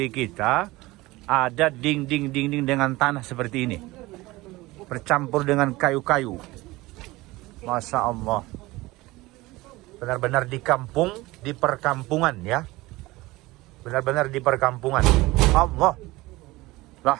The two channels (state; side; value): quieter; left; 20.2 dB